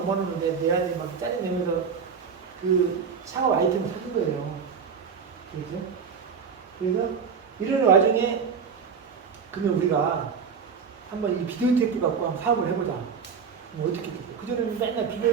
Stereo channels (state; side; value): quieter; left; 6.2 dB